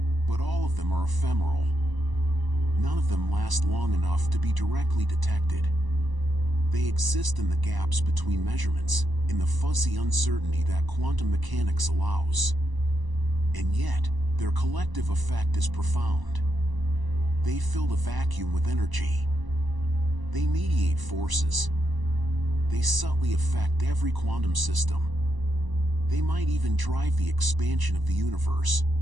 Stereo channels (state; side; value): late; left; 1.0 ms